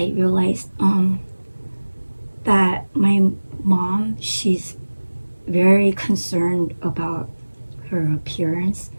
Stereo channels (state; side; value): inverted; both; correlation -1.00